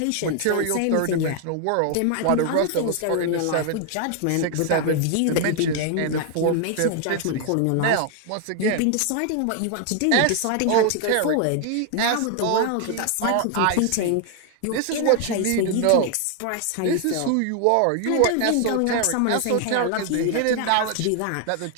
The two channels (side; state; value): both; different; correlation 0.00